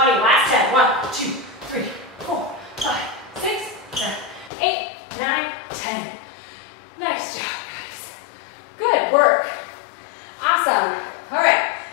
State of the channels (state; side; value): drops out; right; at 4.5 s